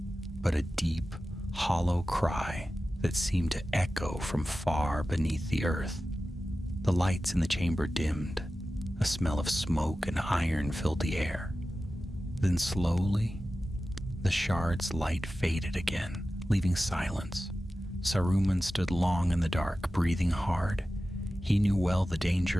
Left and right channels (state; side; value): normal; both; correlation 0.94